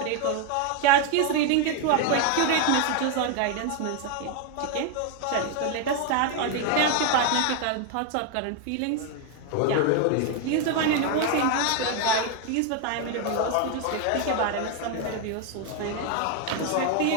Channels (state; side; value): different; both; correlation 0.01